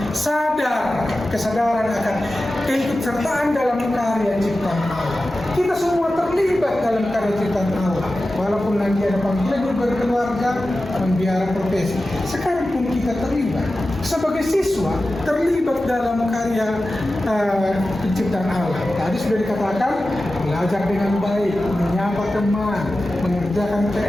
kesadaran akan keikutsertaan dalam karya ciptaan Allah. Kita semua terlibat dalam karya ciptaan Allah, walaupun nanti ada panggilan hidup berkeluarga, membiara profesi. Sekarang pun kita terlibat sebagai siswa, terlibat dalam karya penciptaan Allah. Tadi sudah dikatakan, belajar dengan baik, menyapa teman, mengerjakan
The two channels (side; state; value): both; normal; correlation 0.94